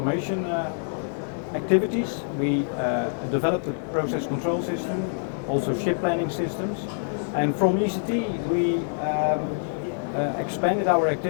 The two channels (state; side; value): silent; right; digital silence